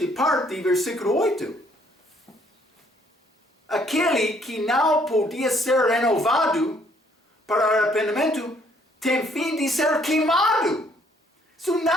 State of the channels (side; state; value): both; normal; correlation 0.65